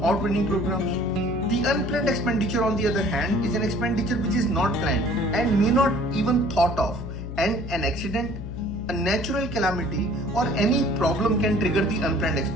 or training programs. The unplanned expenditure, on the other hand, is an expenditure which is not planned and may not even thought of, and an accident, a natural calamity, or any problem can trigger the unplanned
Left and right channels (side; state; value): left; noise; hum, 8 dB below the sound